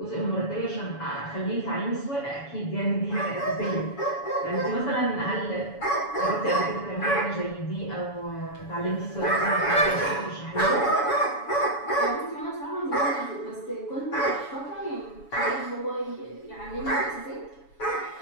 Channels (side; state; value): right; late; 7.1 ms